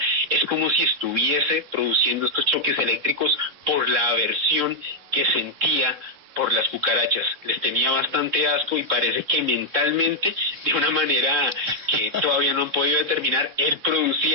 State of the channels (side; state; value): left; late; 3.6 ms